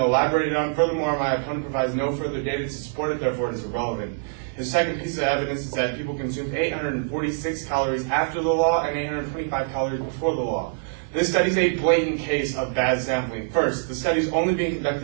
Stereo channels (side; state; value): left; silent; digital silence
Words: on. Furthermore, my opponent provides no further data to support it, therefore it is irrelevant. His second piece of evidence is that people consumed 846 calories after the law and 825 calories before the law. This study is a blatant case of bad sampling. First, the study is only being